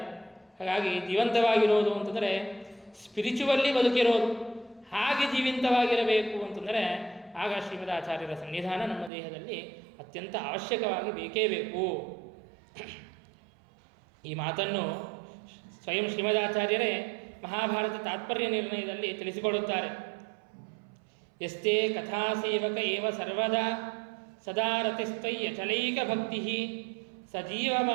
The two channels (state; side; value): drops out; left; at 9.1 s